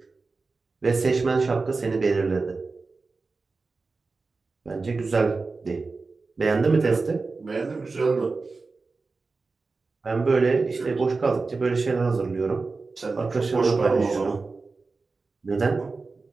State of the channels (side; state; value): left; quieter; 4.0 dB